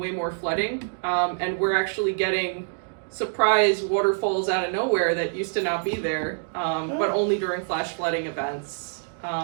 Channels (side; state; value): left; silent; digital silence